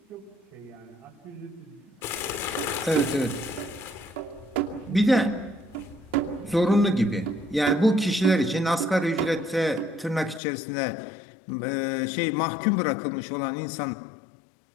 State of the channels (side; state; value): right; drops out; at 10.4 s